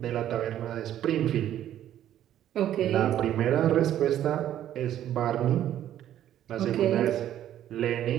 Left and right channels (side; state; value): left; quieter; 11.6 dB